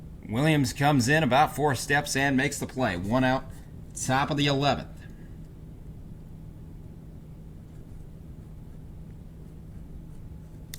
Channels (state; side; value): identical; both; correlation 1.00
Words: Williams comes in about 4 steps and makes the play. 1 out, top of the 11th.